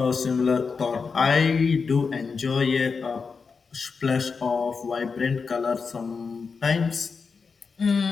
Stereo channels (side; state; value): right; quieter; 5.1 dB